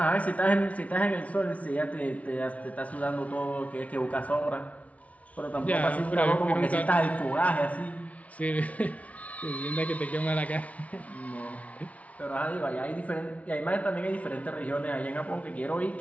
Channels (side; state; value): right; late; 0.067 ms